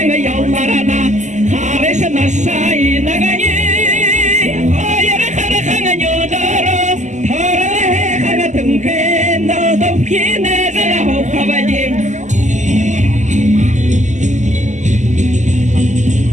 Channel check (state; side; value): late; left; 0.34 ms